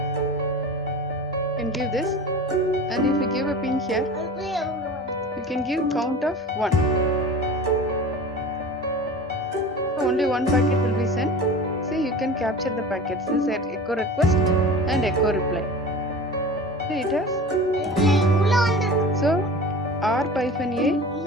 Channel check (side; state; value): both; normal; correlation 0.36